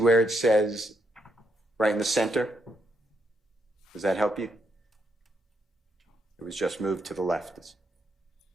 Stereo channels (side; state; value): both; normal; correlation 0.78